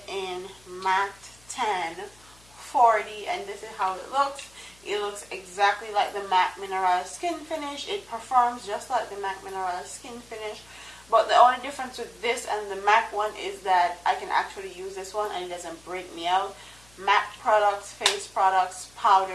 in matte 1040, and this is how it looks. It looks exactly like the MAC Mineral Skin Finish. It performs just like the MAC Mineral Skin Finish, but the only difference with this and the MAC one is that I can actually use this one and it doesn't break me out. MAC products, face products,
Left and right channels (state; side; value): noise; left; hum, 28 dB below the sound